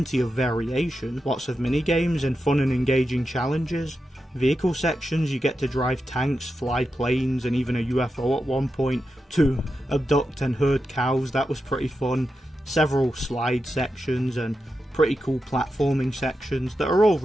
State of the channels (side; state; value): both; normal; correlation 0.89